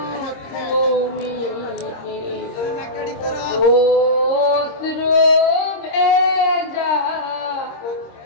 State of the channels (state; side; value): late; right; 26 ms